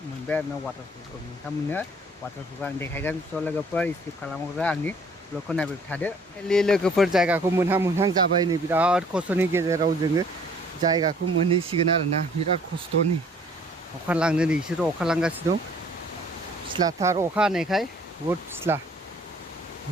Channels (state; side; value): normal; both; correlation 0.57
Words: मोनबाय आरो ना वाटारफलखौ नोंथांमोननो वाटारफलखौ आं देखायगोन स' लोगोफोर स्किप खालामग्रा आंनि ब्लगखौ नायबाय थादो लोगोफोर जायगाखौ मोनहां जाबाय नै बिराद खस्थ'नि गेजेराव जोङो जायगाखौ मोनहैसिगोन आरोना बिराद खस्थ'नि अखा लांनो नै इसोर अखा लांगासिनो दं फिस्लाथार अखा हानायखाय बहुद फिस्ला